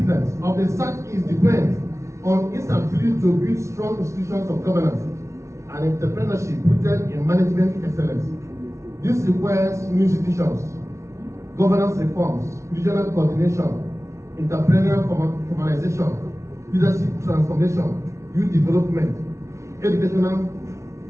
of the Southeast depends on its ability to build strong institutions of governance and entrepreneurship rooted in management excellence. This requires new institutions, governance reforms, regional coordination, entrepreneurial formalization, leadership transformation, youth development, educational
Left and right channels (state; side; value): late; left; 0.14 ms